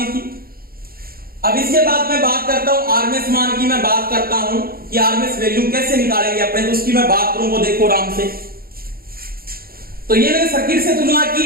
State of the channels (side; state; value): left; late; 0.43 ms